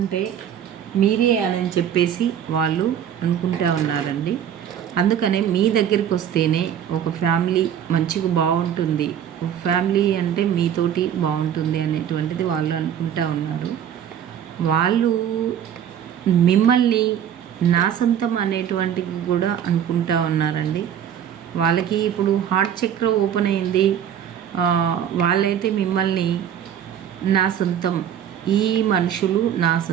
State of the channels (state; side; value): quieter; left; 9.4 dB